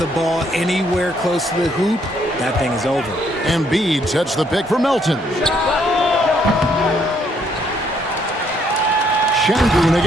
ball anywhere close to the hoop, that thing is over. Embiid sets the pick for Melton. Şengün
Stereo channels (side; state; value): both; normal; correlation 0.69